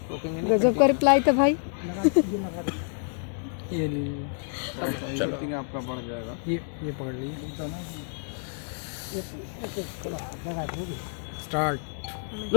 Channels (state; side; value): silent; right; 59 dB below the other